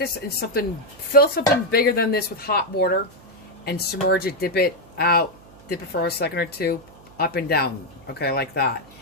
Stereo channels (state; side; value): noise; right; hum, 24 dB below the sound